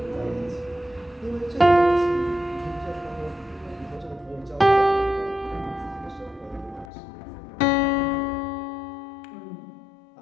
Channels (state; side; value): drops out; right; at 6.9 s